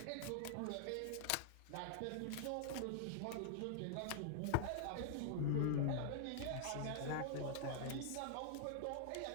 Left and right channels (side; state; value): both; different; correlation -0.01